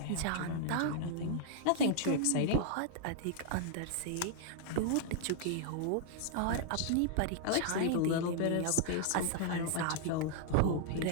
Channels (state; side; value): different; both; correlation -0.01